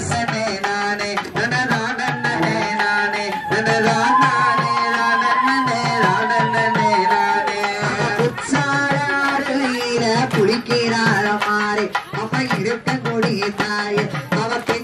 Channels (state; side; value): identical; both; correlation 1.00